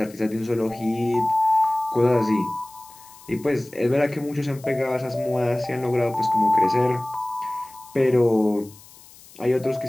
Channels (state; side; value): noise; left; hiss, 22 dB below the sound